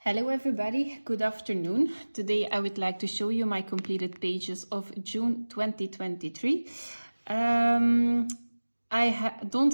Hello everybody, good afternoon. Today I would like to show you my completed pages of June 2023. I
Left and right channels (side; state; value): both; inverted; correlation -1.00